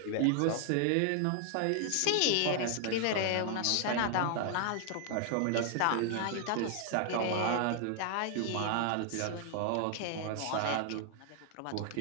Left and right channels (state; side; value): different; both; correlation 0.00